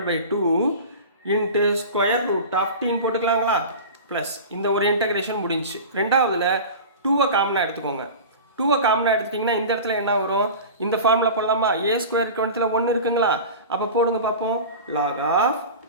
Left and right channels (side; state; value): both; inverted; correlation -0.33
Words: by 2 into square root of டீன்னு போட்டுக்கலாங்களா, ப்ளஸ் இந்த ஒரு இன்டகிரேஷன் முடிஞ்சு. ரெண்டாவதுல 2வை காமனாக எடுத்துக்கோங்க. 2வை காமனாக எடுத்துட்டிங்கன்னா இந்த இடத்துல என்ன வரும், இந்த ஃபார்முலா போடலாமா, ஏ ஸ்கொயர் கவனத்தில் 1 இருக்குங்களா? அப்போ போடுங்க பார்ப்போம், log of